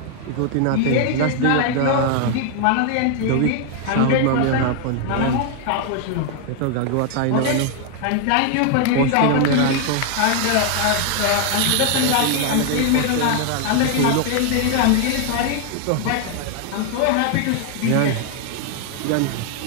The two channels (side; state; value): both; different; correlation 0.00